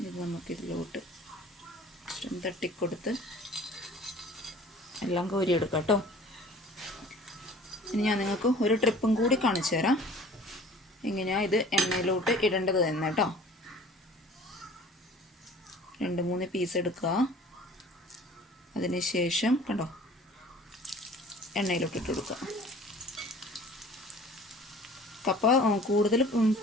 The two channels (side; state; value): both; normal; correlation 0.47